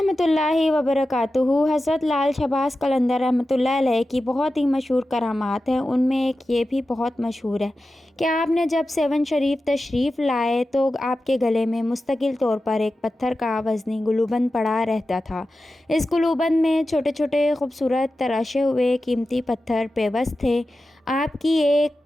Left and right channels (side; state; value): both; normal; correlation 0.93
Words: اللہ وبرکاتہ۔ حضرت لال شہباز قلندر رحمۃ اللہ علیہ کی بہت ہی مشہور کرامات ہیں۔ ان میں ایک یہ بھی بہت مشہور ہے کہ آپ نے جب سیون شریف تشریف لائے تو آپ کے گلے میں مستقل طور پر ایک پتھر کا وزنی گلوبند پڑا رہتا تھا۔ اس گلوبند میں چھوٹے چھوٹے خوبصورت تراشے ہوئے قیمتی پتھر پیوست تھے۔ آپ کی ایک